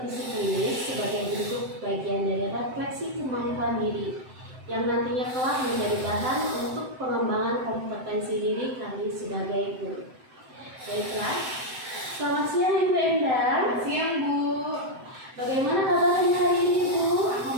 klinis sebagai bentuk bagian dari refleksi kemampuan diri yang nantinya kelak menjadi bahan untuk pengembangan kompetensi diri kami sebagai guru. Baiklah, selamat siang Ibu Endang. Selamat siang Bu. Bagaimana kabarnya hari ini Bu?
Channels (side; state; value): left; late; 7.8 ms